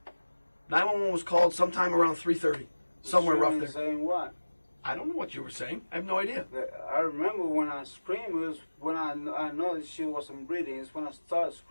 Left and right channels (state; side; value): inverted; both; correlation -1.00